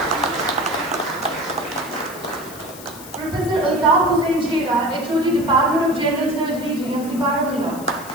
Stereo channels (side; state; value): left; noise; hiss, 16 dB below the sound